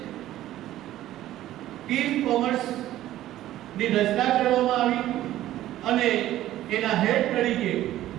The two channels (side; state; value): left; quieter; 13.9 dB